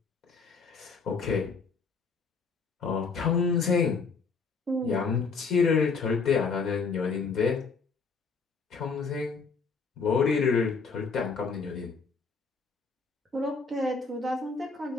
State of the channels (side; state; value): right; quieter; 4.8 dB